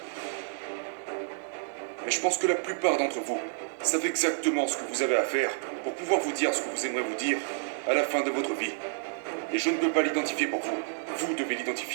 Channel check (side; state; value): left; silent; 58 dB below the other